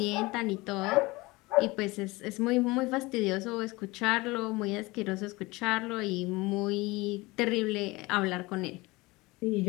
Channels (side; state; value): right; quieter; 22.4 dB